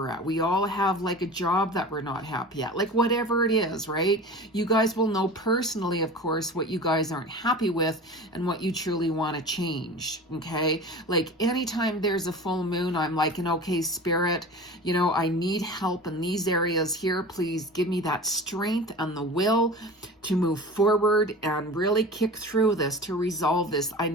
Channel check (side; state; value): both; normal; correlation 0.35